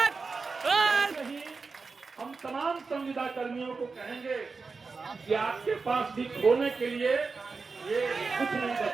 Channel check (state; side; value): quieter; left; 4.5 dB